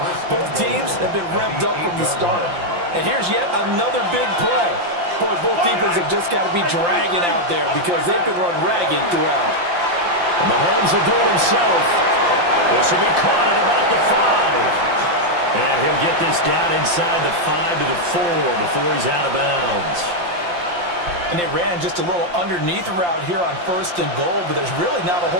Both teams have been revved up from the start. And here's yet another big play. Boy, both defenses have just got to be dragging out there because they've been run ragged throughout. Mahomes will do it himself. This will be caught at about the 5. And he'll get this down inside the 5 to the 4 before he's out of bounds. And they ran just a little underneath route here on 1st and goal, but there's really not a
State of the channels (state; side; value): late; left; 5.7 ms